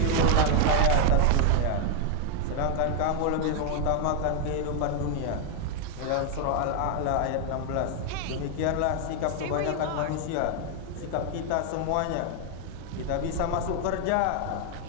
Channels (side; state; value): both; different; correlation 0.00